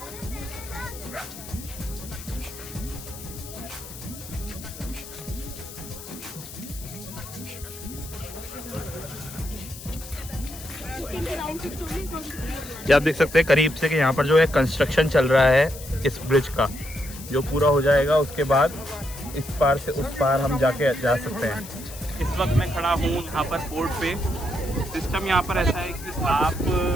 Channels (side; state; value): left; noise; hiss, 14 dB below the sound